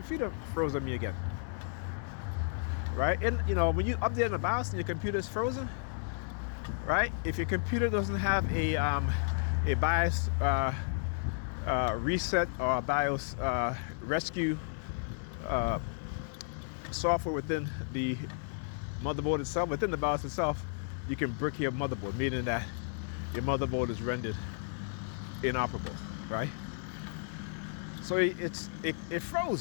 froze on me again. Right? And you know, when you update the BIOS and your computer is frozen, right? If your computer doesn't have a BIOS reset or a BIOS rescue software within the motherboard itself, within the BIOS itself, you can brick your motherboard, meaning that your motherboard is rendered inoperable, right? So it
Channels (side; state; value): right; silent; 56 dB below the other